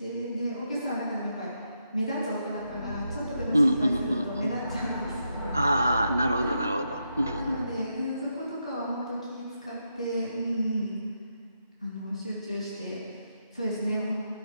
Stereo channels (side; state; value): both; inverted; correlation -0.82